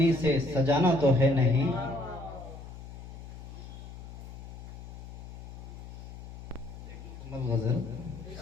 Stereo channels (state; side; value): noise; left; hum, 12 dB below the sound